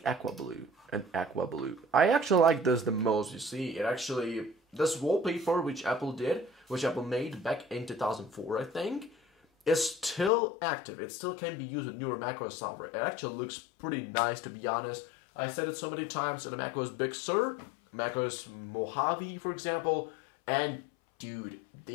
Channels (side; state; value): right; drops out; at 10.3 s